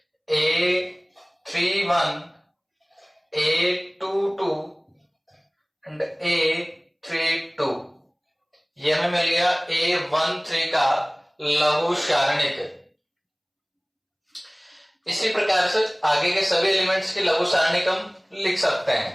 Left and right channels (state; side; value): identical; both; correlation 1.00